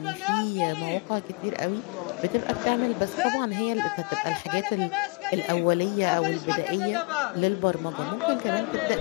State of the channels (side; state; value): right; quieter; 30.6 dB